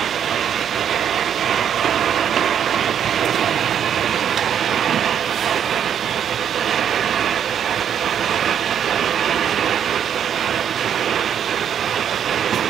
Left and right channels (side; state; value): left; quieter; 8.8 dB